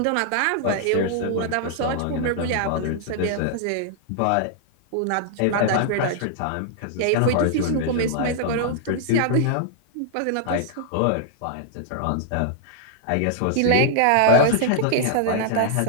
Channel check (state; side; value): different; both; correlation -0.01